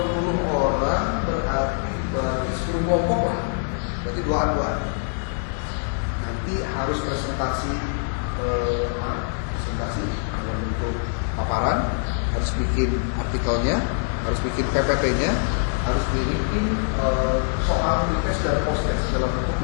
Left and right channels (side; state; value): right; silent; digital silence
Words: orang berarti 10 kelompok lah. Berarti duaan-duaan. Nanti harus presentasi dalam bentuk paparan, harus bikin artikelnya, harus bikin PPT-nya, harus bikin soal request dan post-test dalam bentuk